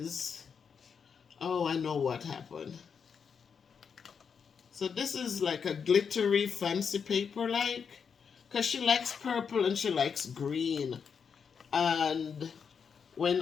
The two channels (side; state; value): right; quieter; 6.4 dB